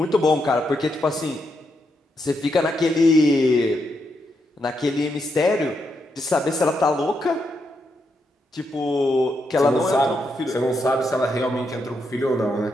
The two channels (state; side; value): normal; both; correlation 0.81